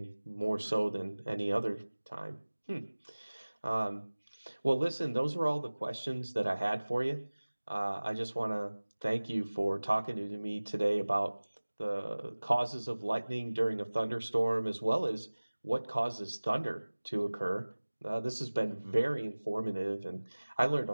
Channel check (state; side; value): inverted; both; correlation -1.00